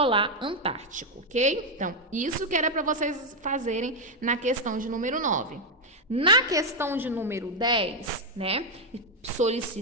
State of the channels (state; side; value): normal; both; correlation 0.02